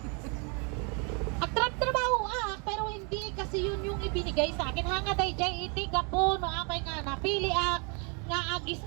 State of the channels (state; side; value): quieter; left; 34.7 dB